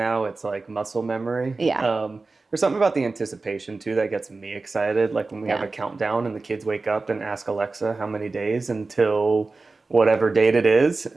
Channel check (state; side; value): quieter; left; 3.7 dB